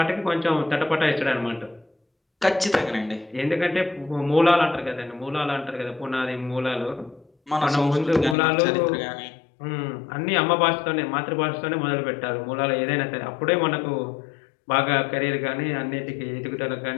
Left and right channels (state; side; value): drops out; right; at 8.3 s